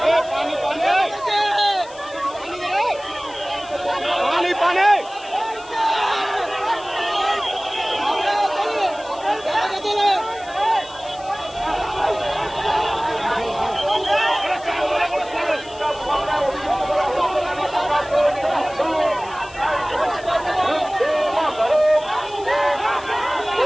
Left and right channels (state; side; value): noise; left; hiss, 21 dB below the sound